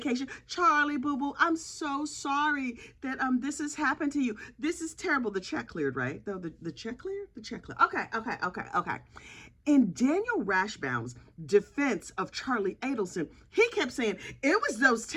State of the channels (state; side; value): identical; both; correlation 1.00